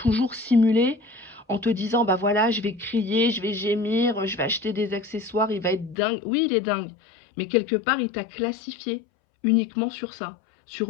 simulé en te disant, bah voilà, je vais crier, je vais gémir, je vais acheter des accessoires, il va être dingue. Oui, il est dingue, mais quelque part, il t'a classifié uniquement sur ça,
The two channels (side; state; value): right; drops out; at 6.0 s